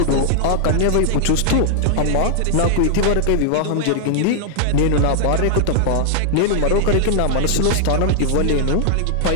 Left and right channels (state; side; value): different; both; correlation -0.01